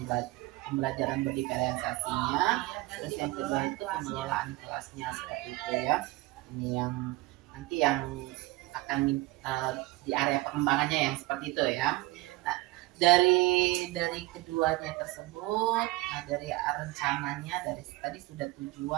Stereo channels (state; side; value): quieter; left; 20.4 dB